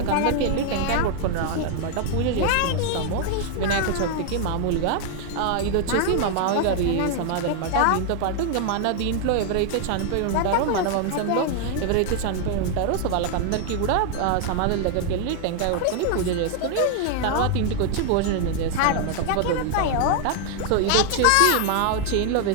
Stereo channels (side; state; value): both; different; correlation 0.00